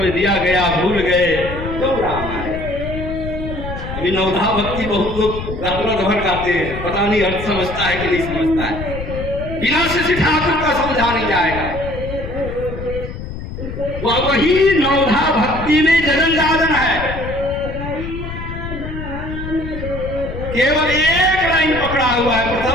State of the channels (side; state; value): left; noise; rumble, 8 dB below the sound